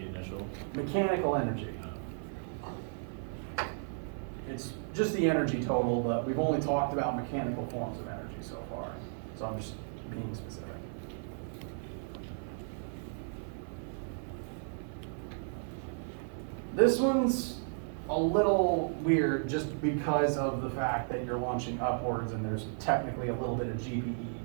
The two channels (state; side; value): silent; left; 55 dB below the other